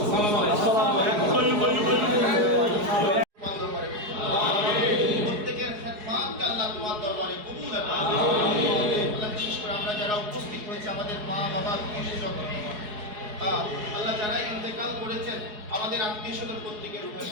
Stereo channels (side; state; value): left; late; 4.7 ms